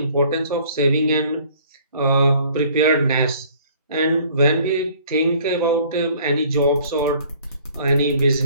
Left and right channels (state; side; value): inverted; both; correlation -0.55